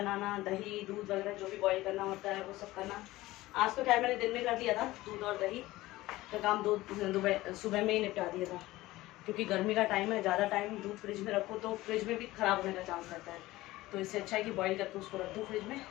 दही दूध वगैरह जो भी बॉईल करना होता है वो सब करना। आज तो खैर मैंने दिन में कर दिया था, दूध और दही का काम सुबह में ही निपटा दिया था, क्योंकि गर्मी का टाइम है, ज़्यादा टाइम दूध फ्रिज में रखो तो फ्रिज में भी ख़राब होने का चांस रहता है, तो इससे अच्छा है कि बॉईल करके उसको रख दो फ्रिज में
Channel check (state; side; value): quieter; right; 17.9 dB